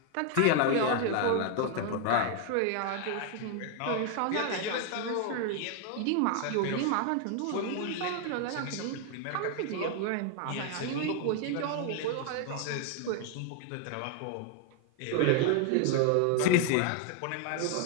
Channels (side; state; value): both; different; correlation 0.00